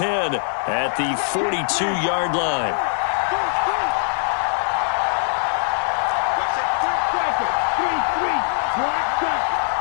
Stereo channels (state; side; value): silent; right; digital silence